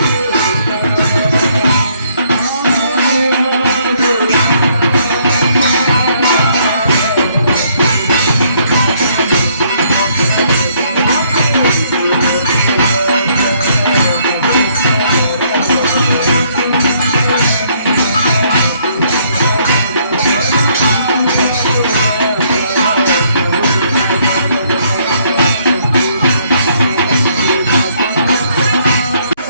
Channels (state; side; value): inverted; both; correlation -0.67